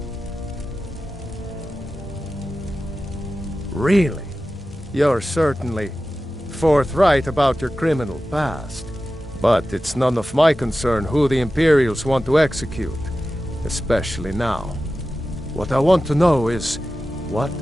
Really? You're certainly forthright about your criminal past. But it's none of my concern who the Imperials want to execute, especially now. What I want to know is, what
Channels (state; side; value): normal; both; correlation 0.94